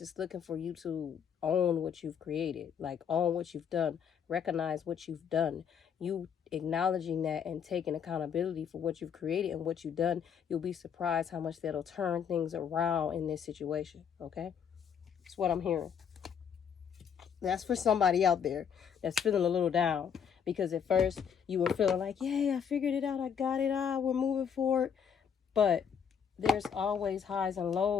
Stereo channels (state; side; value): quieter; right; 7.5 dB